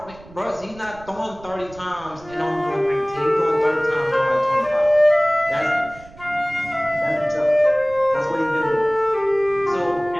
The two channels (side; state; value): right; noise; rumble, 21 dB below the sound